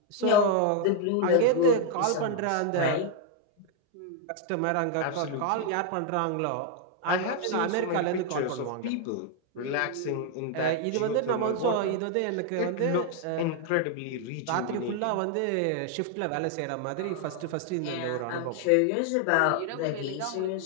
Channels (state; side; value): different; both; correlation 0.00